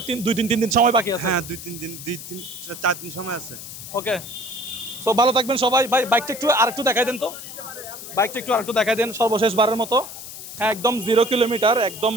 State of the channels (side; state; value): left; noise; hiss, 12 dB below the sound